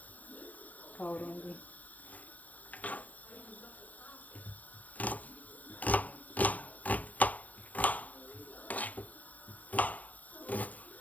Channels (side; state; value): right; late; 0.074 ms